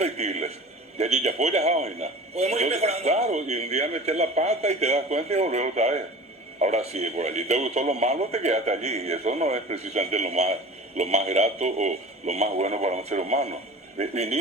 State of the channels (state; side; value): normal; both; correlation 0.39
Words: Y allí ya fue, ya vaina. Podemos ir mejorando. Claro, y un día meter la pata y te das cuenta y volver otra vez. Ahora sí, por allí te gustó lo malo, te quedaste allí. Y eso no es precisamente lo más grato o lo más bueno para un ser humano.